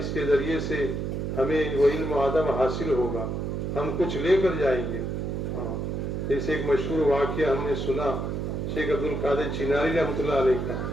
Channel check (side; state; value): right; noise; hum, 2 dB below the sound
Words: کے ذریعے سے ہمیں وہ علم و ادب حاصل ہوگا، ہم کچھ لے کر جائیں گے۔ جیسے ایک مشہور واقعہ ہم نے سنا شیخ عبد القادر چناری رحمۃ اللہ علیہ کا،